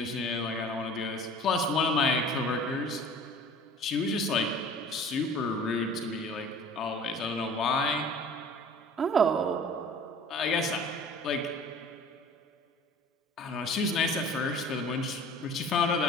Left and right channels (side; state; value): both; normal; correlation 0.45